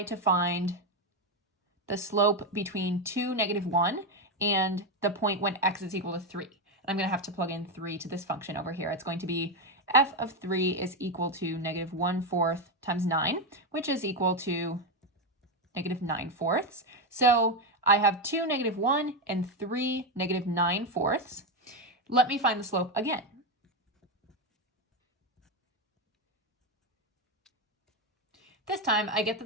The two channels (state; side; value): normal; both; correlation 0.09